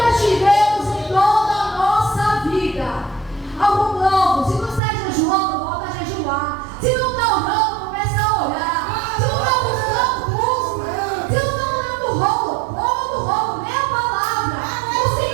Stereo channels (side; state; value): left; drops out; at 4.8 s